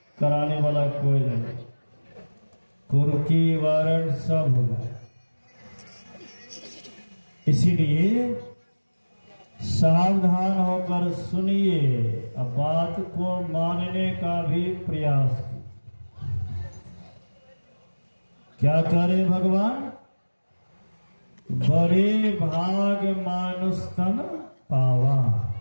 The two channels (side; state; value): both; inverted; correlation -1.00